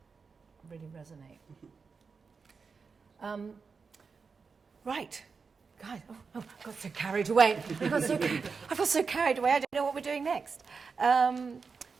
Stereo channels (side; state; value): left; quieter; 5.1 dB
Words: really resonate. Right, guys. Oh, I got so carried away. I got so carried away. I don't know what we're doing next.